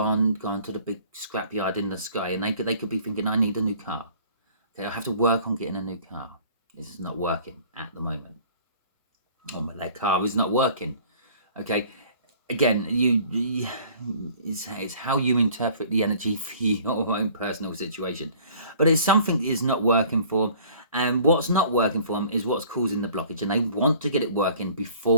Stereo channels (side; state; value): both; inverted; correlation -0.52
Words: to the big scrapyard in the sky, and they could be thinking, I need a new car. Okay, I have to work on getting a new car. This is not working at the moment. Oh, their car is not working. Okay, again, it's how you interpret the energy for your own personal situation. But it's something that is not working for them, and what's not working for them is what's causing the blockage, and they want to get it working